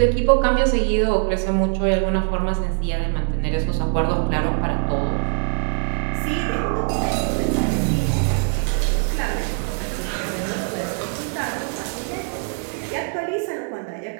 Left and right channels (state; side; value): silent; left; 56 dB below the other